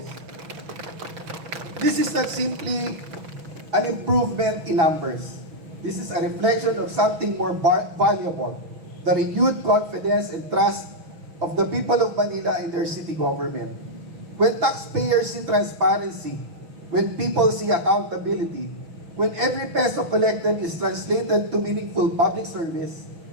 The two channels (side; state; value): left; late; 6.1 ms